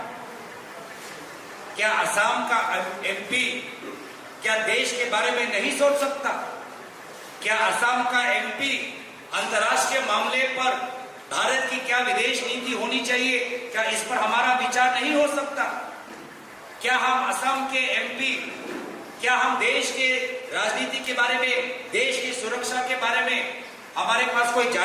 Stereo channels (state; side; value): identical; both; correlation 1.00